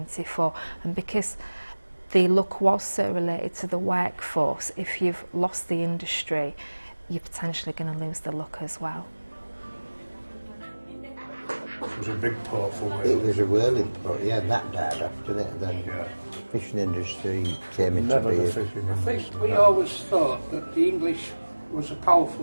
and because the look was so related to the workforce, if you've lost the industry, you're potentially going to lose the look as well. It was a big port for Wales. It was a whirling port, yeah, that died after that. Then fishing industry came into Never the being. fishing I think industry. we always thought that the English was a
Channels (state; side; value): inverted; both; correlation -1.00